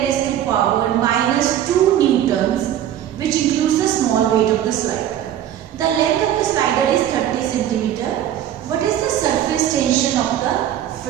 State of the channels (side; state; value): left; quieter; 11.1 dB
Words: raised to power minus 2 newtons, which includes the small weight of the slider. The length of the slider is 30 centimeter. What is the surface tension of the